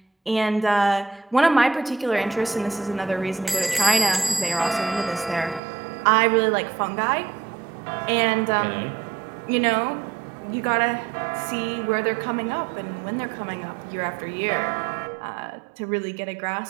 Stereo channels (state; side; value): drops out; left; at 5.6 s